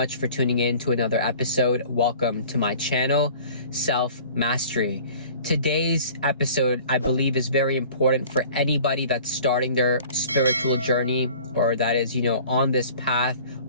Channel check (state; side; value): inverted; both; correlation -0.47